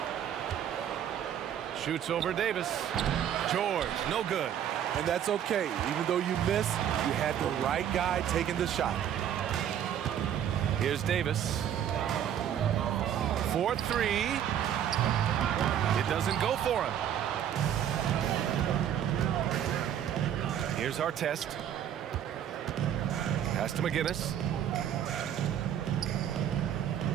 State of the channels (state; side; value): quieter; left; 9.9 dB